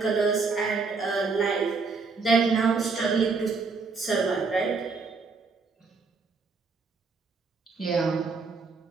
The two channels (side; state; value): left; quieter; 4.5 dB